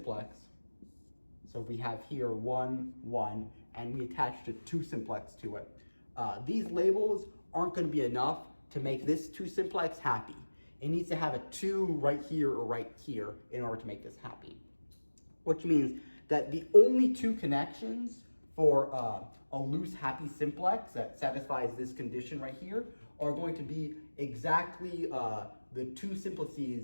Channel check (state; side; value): inverted; both; correlation -1.00